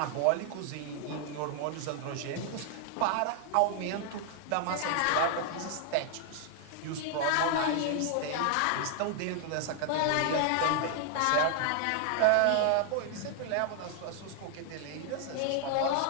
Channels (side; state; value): both; different; correlation 0.00